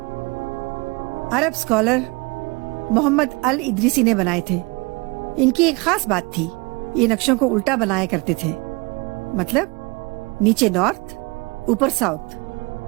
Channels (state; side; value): quieter; left; 27.1 dB